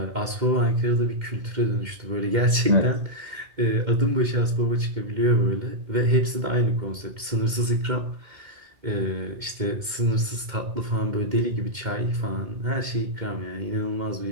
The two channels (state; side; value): late; left; 2.1 ms